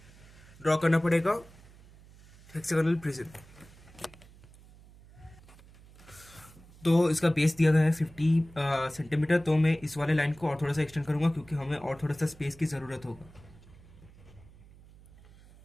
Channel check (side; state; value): right; noise; hum, 23 dB below the sound